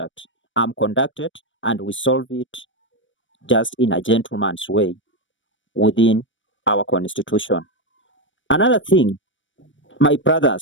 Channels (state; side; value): late; right; 0.56 ms